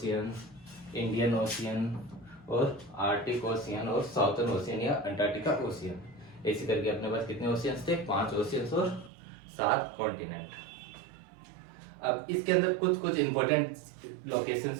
Indian ocean और आर्टिक ओशियन और साउथर्न ओशियन या अंटार्कटिका ओशियन। ऐसे करके अपने पास कितने ओशियंस थे? 5 ओशियंस और 7 कॉन्टिनेंट। अब इसके अंदर कुछ कुछ इंपॉर्टेंट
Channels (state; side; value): drops out; left; at 9.1 s